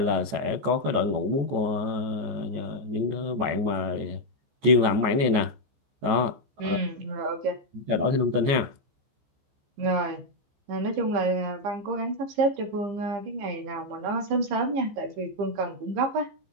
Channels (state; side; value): late; left; 15 ms